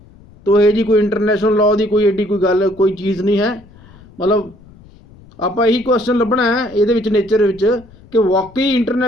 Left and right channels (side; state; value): left; noise; rumble, 24 dB below the sound